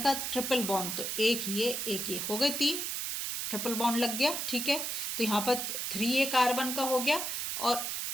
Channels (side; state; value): right; noise; hiss, 2 dB below the sound